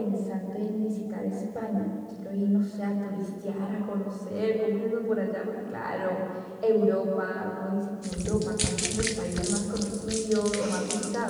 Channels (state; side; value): identical; both; correlation 1.00